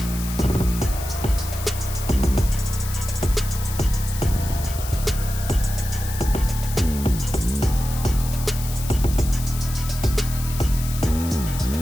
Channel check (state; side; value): noise; left; hiss, 11 dB below the sound